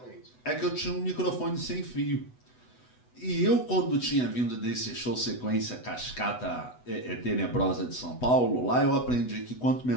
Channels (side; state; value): right; late; 8.1 ms